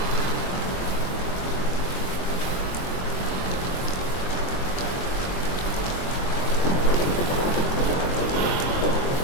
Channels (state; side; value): late; right; 23 ms